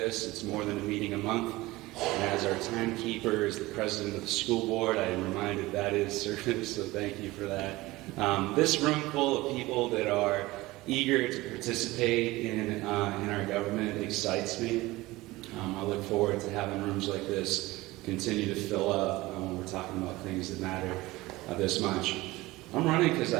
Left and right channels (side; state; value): left; quieter; 19.7 dB